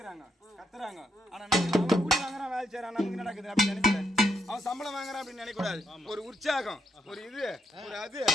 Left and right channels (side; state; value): both; normal; correlation 0.79